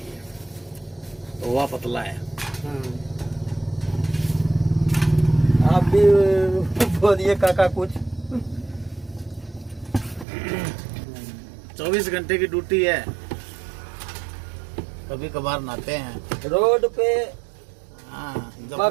तो वह पतला है। आप भी बोलिए काका कुछ। 24 घंटे की ड्यूटी है, कभी कभार नहाते हैं रोड पे।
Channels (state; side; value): drops out; left; at 10.2 s